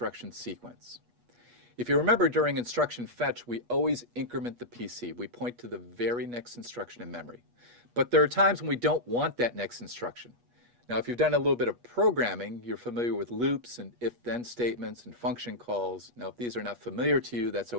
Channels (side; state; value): left; late; 8.3 ms